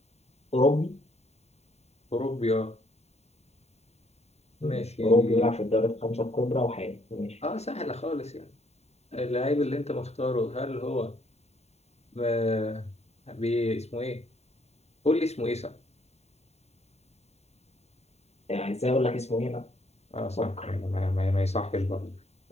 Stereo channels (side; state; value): right; late; 0.31 ms